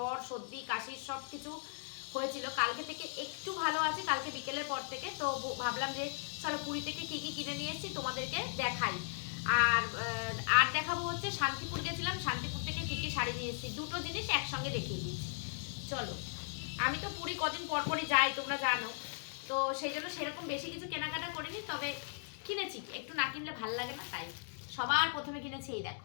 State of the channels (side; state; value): right; silent; digital silence